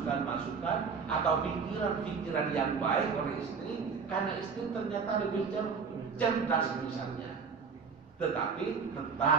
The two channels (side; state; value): left; quieter; 5.7 dB